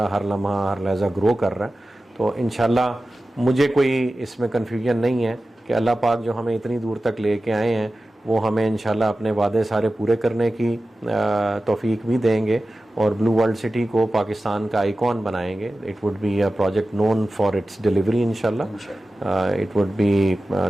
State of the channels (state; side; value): normal; both; correlation 0.95